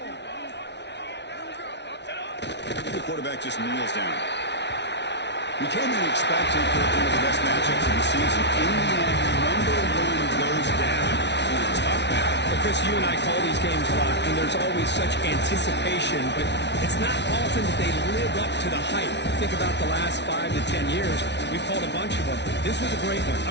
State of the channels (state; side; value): late; right; 0.50 ms